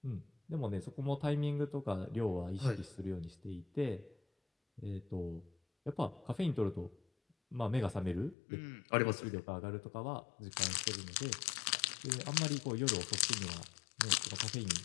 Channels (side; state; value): right; drops out; at 8.3 s